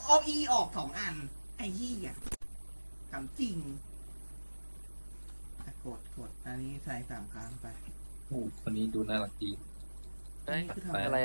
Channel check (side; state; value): both; inverted; correlation -1.00